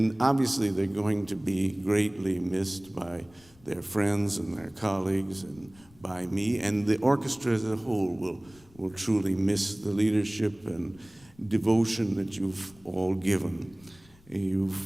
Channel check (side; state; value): left; noise; rumble, 27 dB below the sound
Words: obviously they're going to be greatly missed by their friends and their colleagues and by me. And the orchestra as a whole will truly miss the leadership and devotion that you've all given.